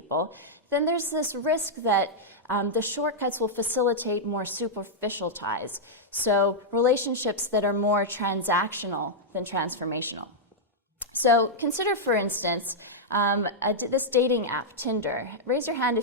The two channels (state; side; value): normal; both; correlation -0.06